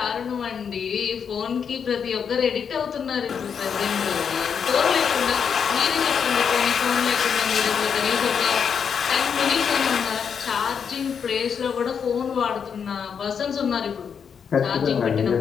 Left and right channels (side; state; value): right; quieter; 6.9 dB